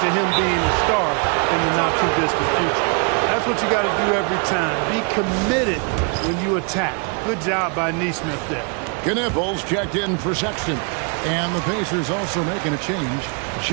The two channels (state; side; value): quieter; left; 36.5 dB